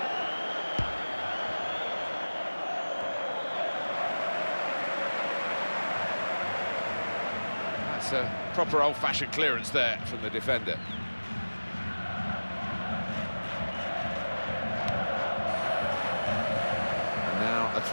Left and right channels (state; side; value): inverted; both; correlation -1.00